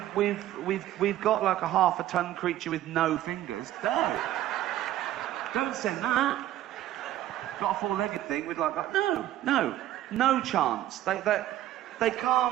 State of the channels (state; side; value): quieter; left; 13.5 dB